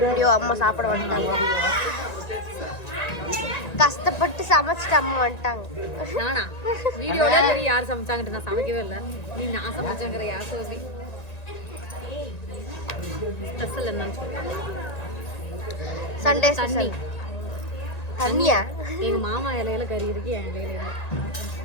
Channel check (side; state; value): right; late; 1.9 ms